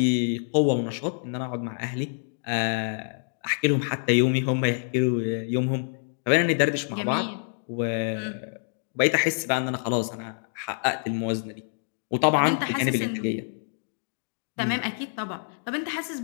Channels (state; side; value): silent; right; digital silence